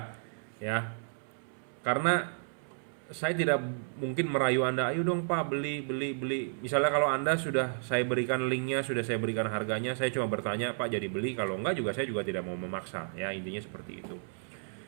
ya. Karena saya tidak mungkin merayu Anda, ayo dong Pak beli. Misalnya kalau Anda sudah saya berikan linknya, sudah saya berikan harganya, saya cuma bertanya Pak jadi beli. Kalau enggak juga saya juga tidak mau memaksa, ya intinya seperti itu.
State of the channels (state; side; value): silent; left; 56 dB below the other